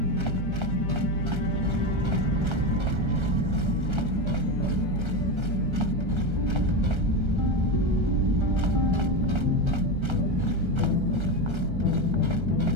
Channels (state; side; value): late; left; 1.3 ms